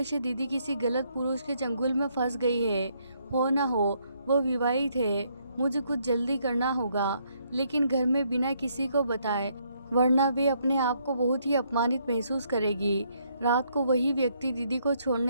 दीदी किसी गलत पुरुष के चंगुल में फंस गई है। हो ना हो वो विवाहित है। मुझे कुछ जल्दी करना होगा, लेकिन घर में बिना किसी को बताए, वरना वे अपने आप को बहुत ही अपमानित महसूस करेगी। रात को वही व्यक्ति दीदी को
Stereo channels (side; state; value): both; inverted; correlation -0.72